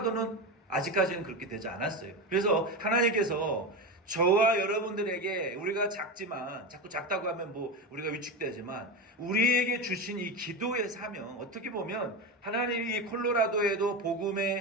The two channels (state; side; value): normal; both; correlation 0.19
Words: 아직까지는 그렇게 되지 않았어요. 그래서 하나님께서 저와 여러분들에게 우리가 작지만 자꾸 작다고 하면 우리가 위축되지만 우리에게 주신 이 기도의 사명 어떻게 보면 하나님이 이 콜로라도에도